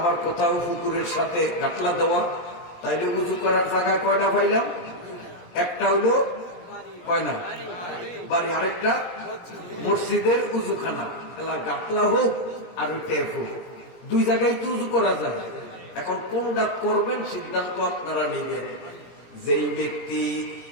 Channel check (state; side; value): late; right; 17 ms